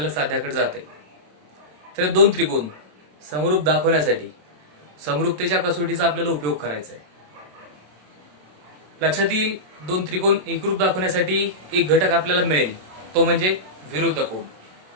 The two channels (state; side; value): late; left; 27 ms